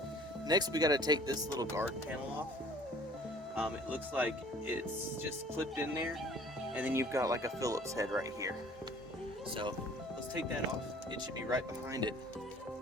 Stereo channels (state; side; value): normal; both; correlation 0.52